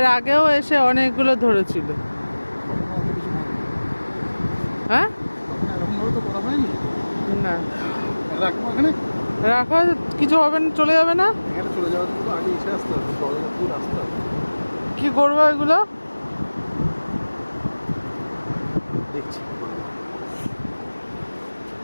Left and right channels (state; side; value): inverted; both; correlation -1.00